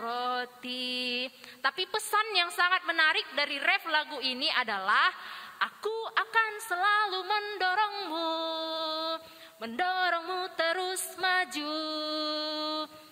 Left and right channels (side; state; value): both; identical; correlation 1.00